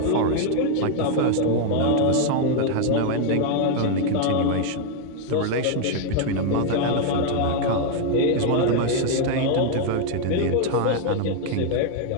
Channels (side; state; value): both; different; correlation 0.00